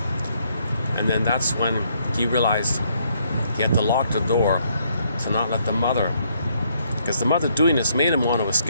and then that's when he realized he had to lock the door to not let the mother, because the mother doing this made him want to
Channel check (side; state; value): both; inverted; correlation -0.71